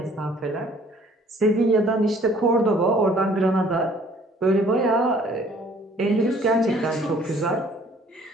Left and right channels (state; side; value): normal; both; correlation 0.57